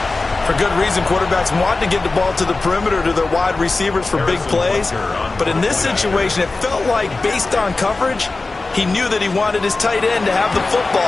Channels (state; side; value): quieter; right; 3.5 dB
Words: For good reason, quarterbacks want to get the ball to the perimeter to their wide receivers for big plays. But in this situation, it felt like, based on coverage, he knew that he wanted his tight end to have the